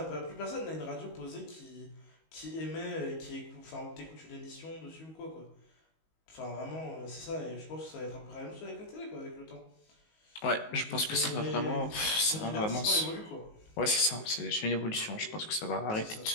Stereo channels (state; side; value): late; right; 19 ms